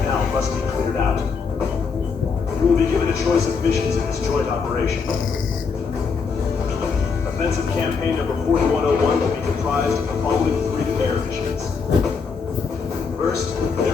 Canal must be cleared out. You will be given a choice of missions in this joint operation. Offensive Campaign Number 4101 will be comprised of the following 3 air missions. First,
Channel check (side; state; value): right; quieter; 5.3 dB